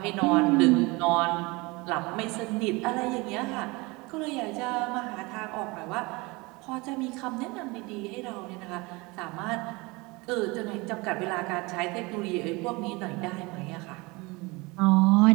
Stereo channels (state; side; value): quieter; left; 24.9 dB